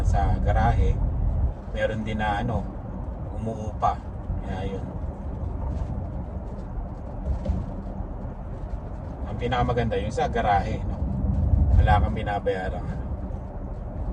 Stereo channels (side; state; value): both; identical; correlation 1.00